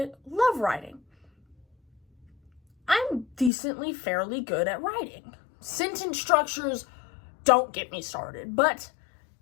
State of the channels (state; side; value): drops out; right; at 3.5 s